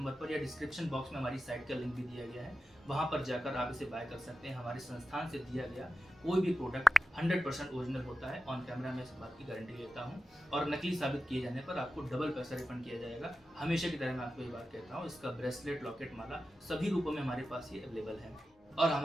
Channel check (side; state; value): both; normal; correlation 0.92